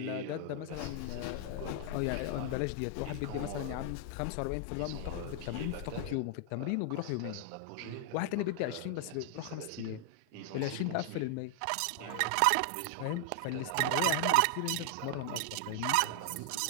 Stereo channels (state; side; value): different; both; correlation 0.00